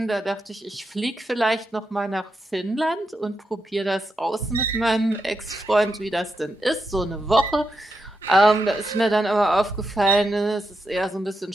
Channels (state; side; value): normal; both; correlation 0.85